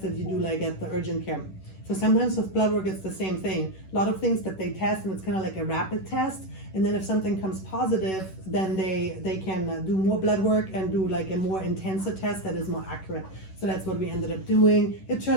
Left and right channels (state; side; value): late; right; 11 ms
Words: that you do like at the urgent care. So sometimes with blood work, it's the same thing. A lot of things that they test, and it's kind of like a rapid test. And then if something comes positive, then they can do more blood work and do like a more intensive test that is more accurate. So that's what we ended up doing. It